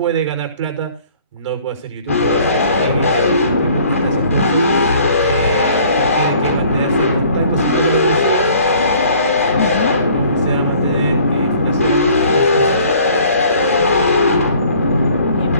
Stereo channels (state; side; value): inverted; both; correlation -0.55